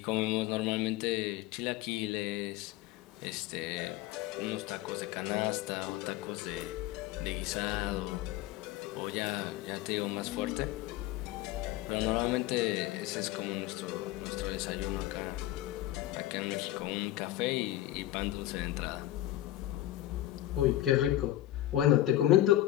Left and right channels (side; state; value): right; quieter; 14.6 dB